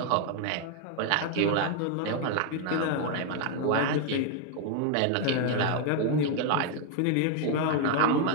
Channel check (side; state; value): both; different; correlation 0.00